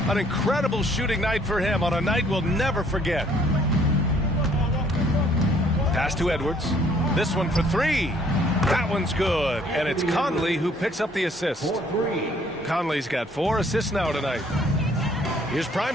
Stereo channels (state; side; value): normal; both; correlation 0.62